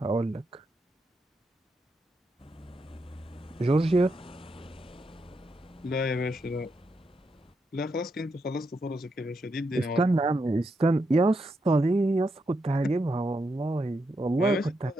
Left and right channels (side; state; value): both; normal; correlation 0.82